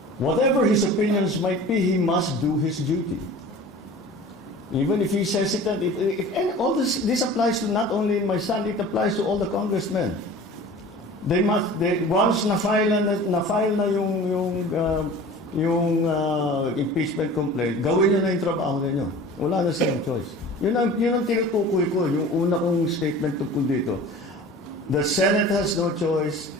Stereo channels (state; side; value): normal; both; correlation 0.41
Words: Whatever his opinions might be, he must do his duty. Even if he's hesitant, and all this applies to not only my son, it applies to all the congressmen. Once na-file na yung impeachment complaint, gawin nyo na yung trabaho ninyo. Wala na silang choice. Yun ang tinutukoy ko, yung una kong statement tungkol dito. The Senate has no choice,